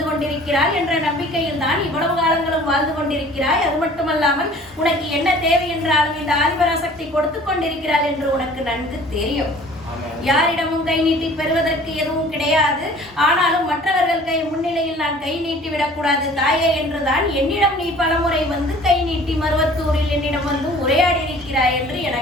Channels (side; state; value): both; normal; correlation 0.49